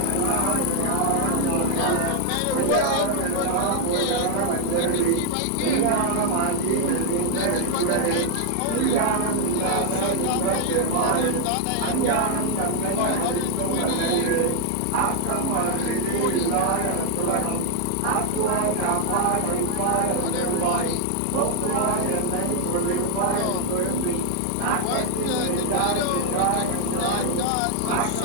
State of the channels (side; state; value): both; different; correlation 0.00